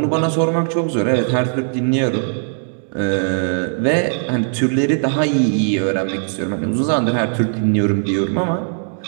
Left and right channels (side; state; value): left; silent; digital silence